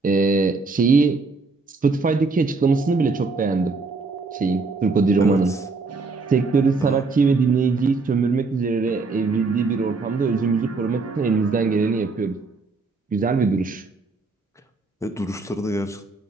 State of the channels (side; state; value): left; quieter; 4.0 dB